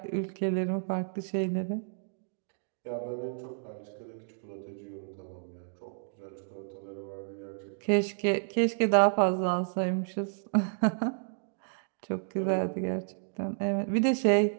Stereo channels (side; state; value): left; silent; digital silence